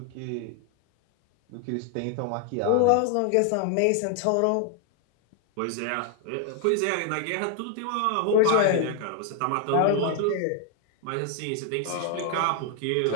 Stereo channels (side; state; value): both; different; correlation 0.00